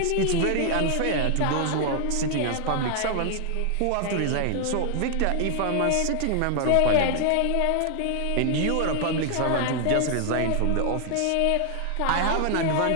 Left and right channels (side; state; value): both; different; correlation 0.00